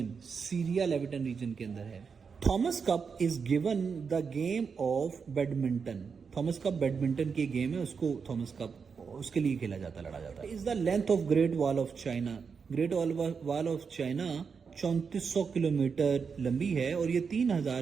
सीरिया लेविटन रीजन के अंदर है. Thomas cup is given the game of badminton. Thomas cup badminton की गेम है, उसको थॉमस कप उसके लिए खेला जाता, लड़ा जाता है. Is the length of great wall of China. Great wall of China 3400 kilometre लंबी है और ये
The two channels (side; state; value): left; quieter; 5.8 dB